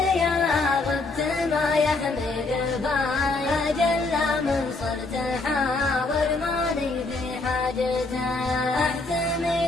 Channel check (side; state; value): right; quieter; 3.4 dB